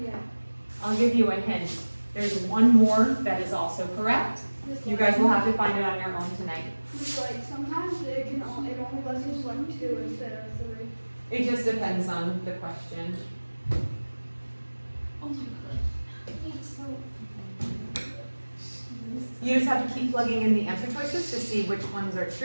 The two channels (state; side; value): inverted; both; correlation -1.00